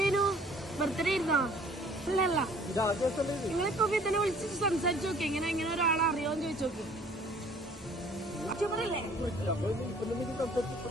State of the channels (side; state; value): both; normal; correlation 0.54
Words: ബർത്ത്ഡേ ഇരുന്നോ? അല്ലല്ല, നിങ്ങളിപ്പോ ഇതിനെ വിളിച്ചിട്ട് സംസാരിച്ചു നോക്കി. ഇങ്ങനെ ഒരാളെ അറിയോന്ന് ചോദിച്ചു നോക്കി.